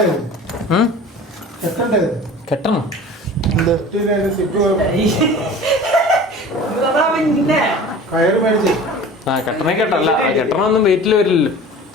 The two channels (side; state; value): both; normal; correlation 0.41